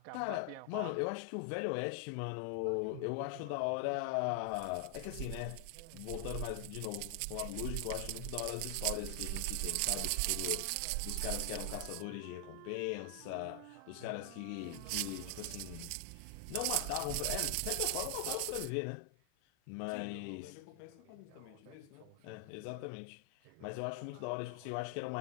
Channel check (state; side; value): different; both; correlation 0.00